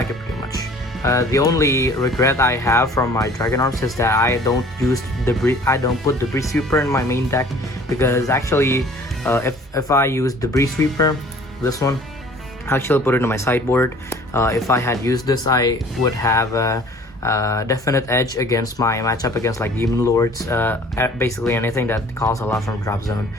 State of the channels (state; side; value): normal; both; correlation 0.50